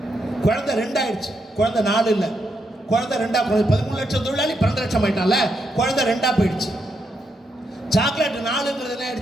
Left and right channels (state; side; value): normal; both; correlation 0.80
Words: குழந்தை 2 ஆயிடுச்சு, குழந்தை 4 இல்லை, குழந்தை 2 குழந்தை 13 லட்சம் தொழிலாளி 12 லட்சம் ஆயிட்டான்ல, குழந்தை 2 போயிடுச்சு. சாக்லேட் 4ங்கிறது என்ன